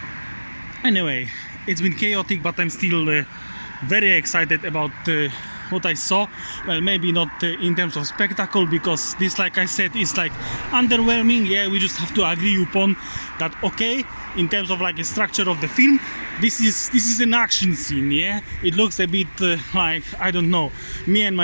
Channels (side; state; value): both; inverted; correlation -1.00